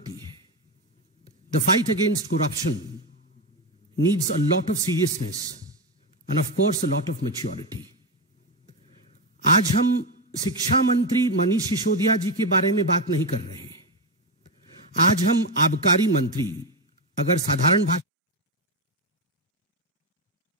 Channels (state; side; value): normal; both; correlation 0.11